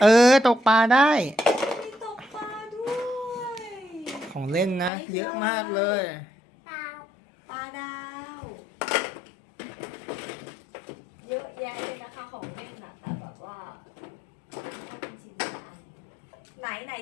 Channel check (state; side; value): drops out; right; at 4.9 s